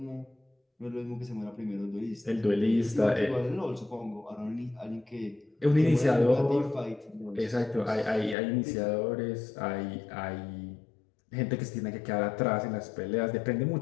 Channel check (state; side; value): drops out; right; at 8.3 s